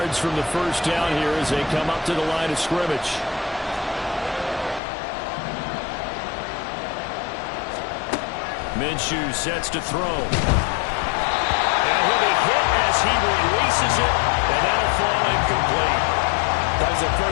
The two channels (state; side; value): drops out; right; at 4.8 s